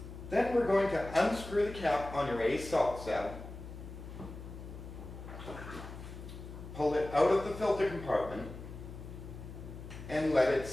Then we're going to unscrew the cap on your ACE salt cell, pull it out of the filter compartment, and let it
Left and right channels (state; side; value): noise; left; hum, 11 dB below the sound